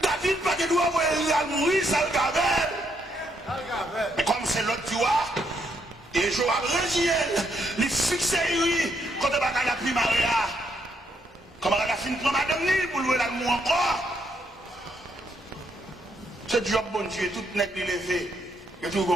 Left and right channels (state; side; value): normal; both; correlation 0.75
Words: David, pas de doigt, il a mourir, ça le gavelle. Mais comme c'est l'autre tu vois, et Joab Régiel, il fixe lui, quand il va à la primaria. Comment elle a fini pour madame ni pour louer l'amour encore. Ce job, bon Dieu, tout n'est pas levé. Et tout le